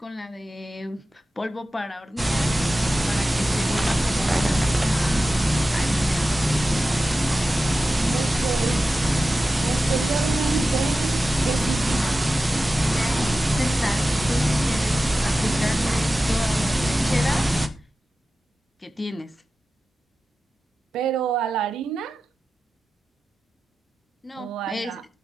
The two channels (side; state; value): both; normal; correlation 0.94